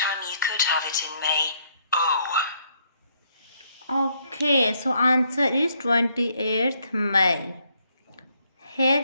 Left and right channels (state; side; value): inverted; both; correlation -0.70